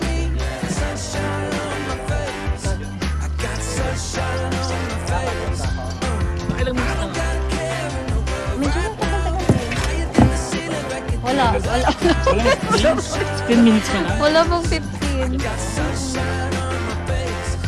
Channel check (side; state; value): both; identical; correlation 1.00